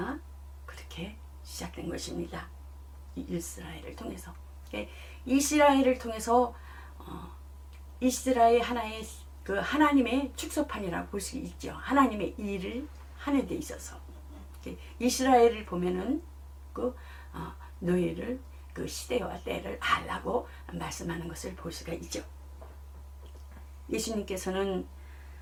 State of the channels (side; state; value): both; identical; correlation 1.00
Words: 그렇게 시작된 것입니다. 이스라엘을 통해서. 이스라엘을 통해서 이스라엘 하나의 그 하나님의 축소판이라고 볼 수 있죠. 하나님의 일을 하는 데 있어서 이스라엘을 보면은 그 너희를 그 시대와 때를 알라고 말씀하는 것을 볼 수가 있죠. 예수님께서는